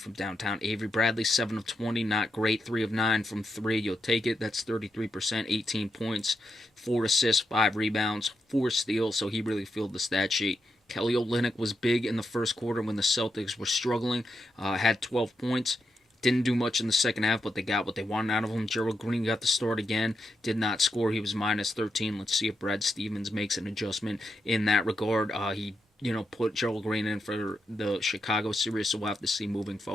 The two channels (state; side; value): normal; both; correlation 0.84